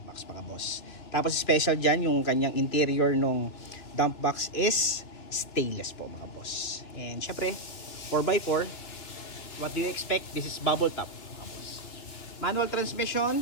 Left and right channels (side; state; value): right; late; 2.8 ms